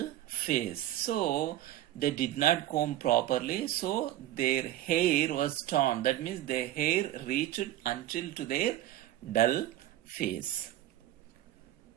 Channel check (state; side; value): quieter; left; 14.0 dB